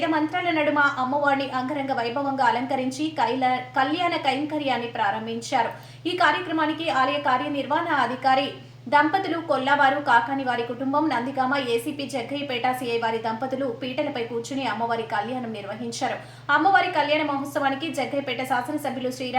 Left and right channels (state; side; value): identical; both; correlation 1.00